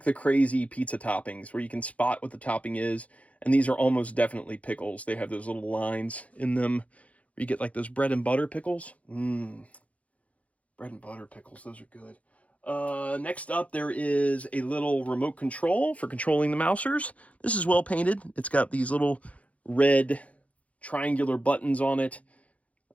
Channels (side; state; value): right; late; 0.066 ms